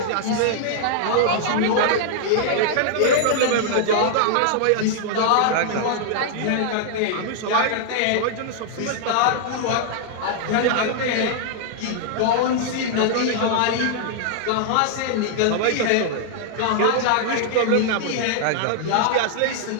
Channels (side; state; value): both; different; correlation -0.01